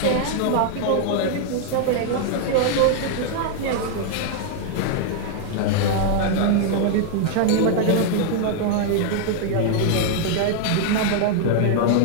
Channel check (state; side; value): different; both; correlation 0.00